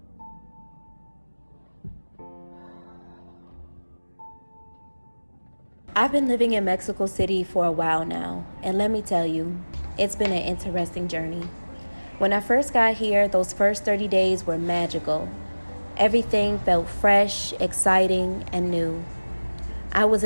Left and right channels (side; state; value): both; inverted; correlation -1.00